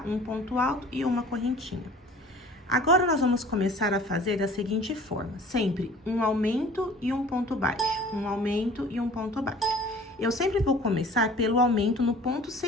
Um ponto alto e uma correntinha. Agora, nós vamos começar a fazer da seguinte forma, sempre um aumento e um ponto baixo, um aumento e um ponto baixo. Eu sempre vou começar pelo aumento no ponto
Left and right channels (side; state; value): both; normal; correlation 0.47